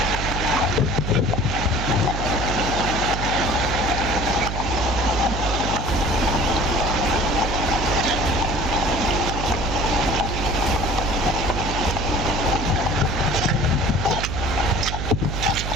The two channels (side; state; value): right; noise; hum, 3 dB below the sound